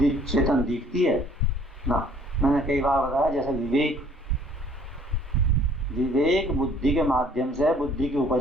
चेतन दिखती है ना। मैंने कई बार बताया, जैसे विवेक बुद्धि के माध्यम से है, बुद्धि की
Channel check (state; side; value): normal; both; correlation 0.57